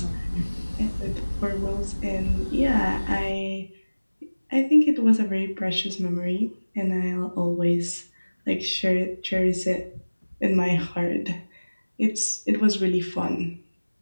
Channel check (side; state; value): both; inverted; correlation -1.00